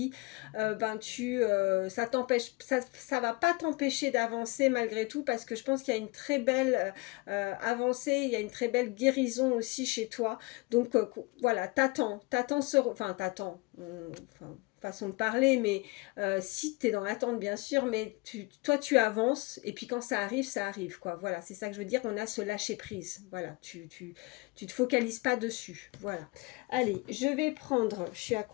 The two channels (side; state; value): right; quieter; 25.3 dB